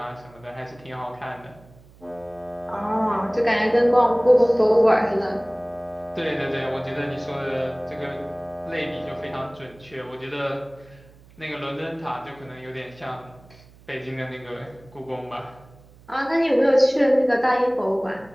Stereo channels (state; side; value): noise; right; hum, 25 dB below the sound